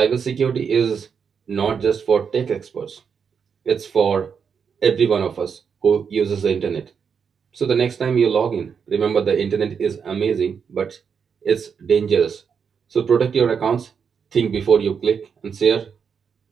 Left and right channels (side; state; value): left; quieter; 6.6 dB